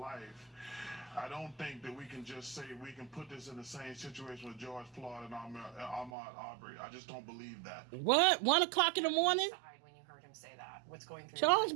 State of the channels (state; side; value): drops out; left; at 6.1 s